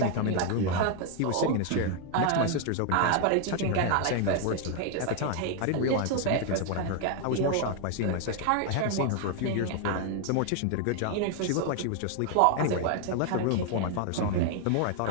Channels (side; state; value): both; different; correlation 0.01